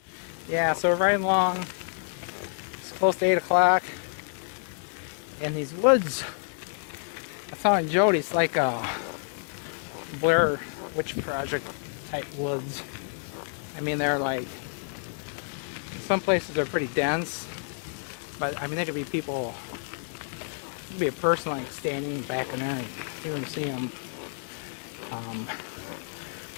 Yeah, so we're riding along. It's close to 8 o'clock. And these woods, I found in Jodie, it's like a Blair Witch Project type woods. I mean, they're like, some places are pretty dense, but I mean, there could be people, there could be a person like standing back in there and you can see them.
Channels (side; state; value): right; silent; 59 dB below the other